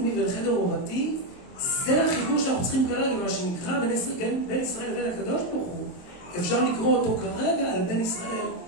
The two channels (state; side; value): late; right; 22 ms